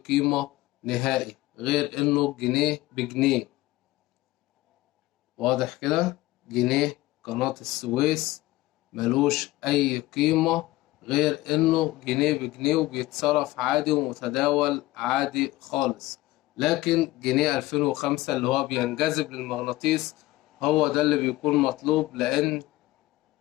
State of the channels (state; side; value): quieter; right; 18.1 dB